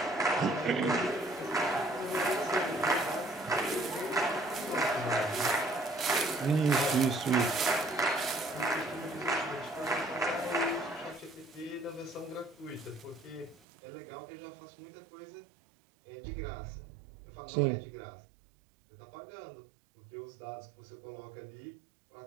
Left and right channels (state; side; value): drops out; left; at 13.7 s